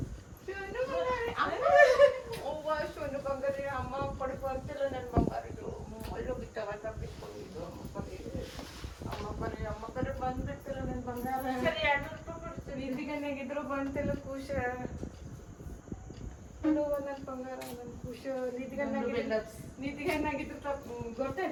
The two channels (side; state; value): both; identical; correlation 1.00